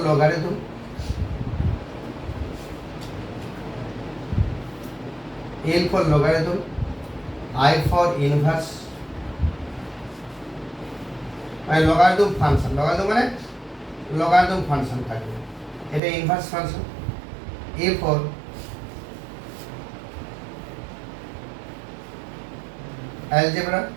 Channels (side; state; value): left; drops out; at 16.0 s